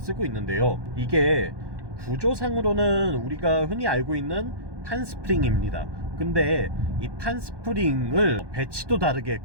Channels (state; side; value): late; left; 1.2 ms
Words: 있는데요. 이게 구조상으로는 우리가 흔히 알고 있는 판스프링입니다. 근데 이 판스프링을 배치도 다르게